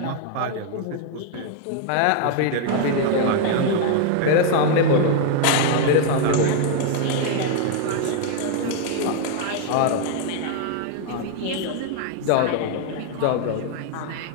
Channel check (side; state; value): both; different; correlation 0.00